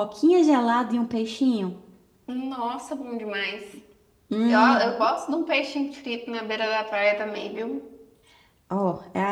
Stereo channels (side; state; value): both; identical; correlation 1.00